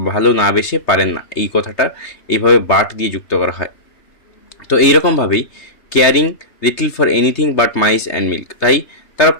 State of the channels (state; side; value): late; right; 3.3 ms